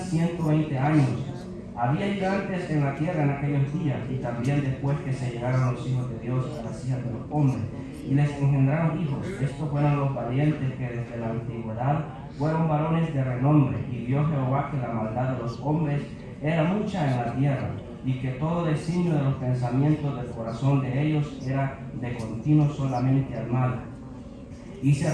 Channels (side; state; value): both; identical; correlation 1.00